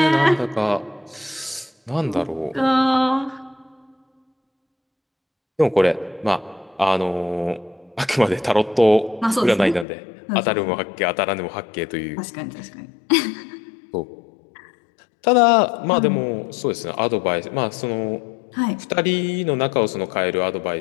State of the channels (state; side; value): drops out; right; at 9.9 s